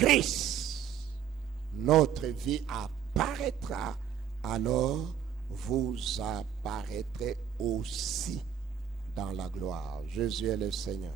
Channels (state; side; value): quieter; left; 8.5 dB